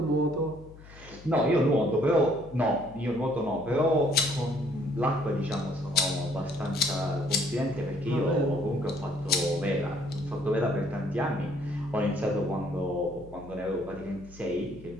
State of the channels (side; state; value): left; noise; hum, 19 dB below the sound